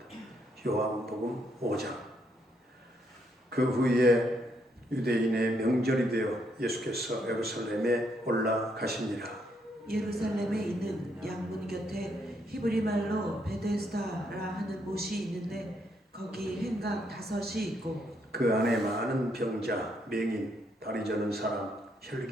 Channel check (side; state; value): both; normal; correlation 0.74